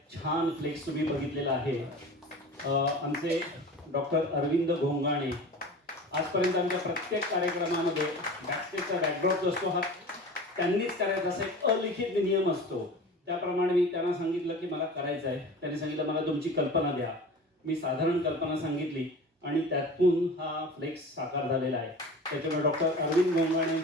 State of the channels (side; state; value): both; normal; correlation 0.36